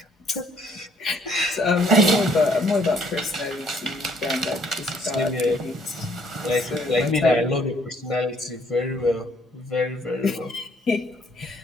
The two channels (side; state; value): both; normal; correlation 0.65